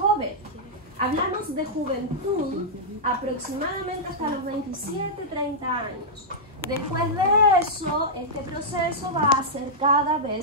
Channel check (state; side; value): normal; both; correlation -0.09